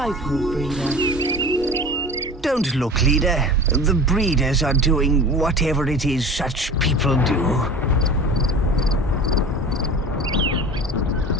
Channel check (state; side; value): normal; both; correlation 0.37